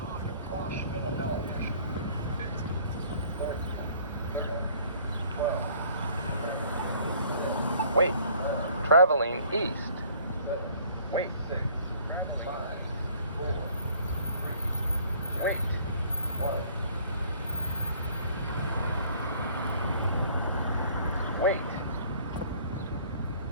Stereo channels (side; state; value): both; inverted; correlation -0.56